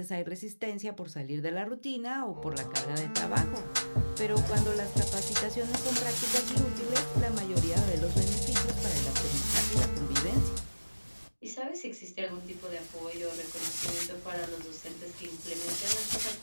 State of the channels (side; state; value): both; inverted; correlation -1.00